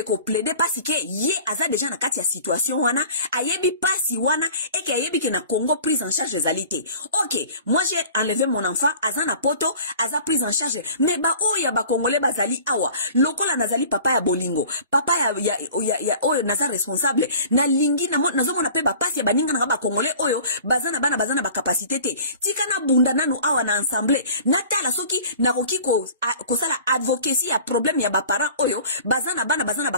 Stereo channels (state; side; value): inverted; both; correlation -0.45